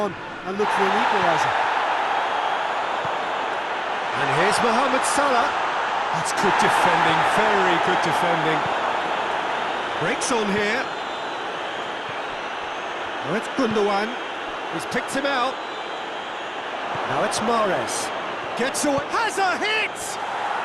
and look for an equaliser. And here's Mohamed Salah. That's good defending, very good defending. Breaks on here. Now it's Gundogan. He's picked him out. Now it's Mahrez. Gets away. Has a hit!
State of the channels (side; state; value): both; identical; correlation 1.00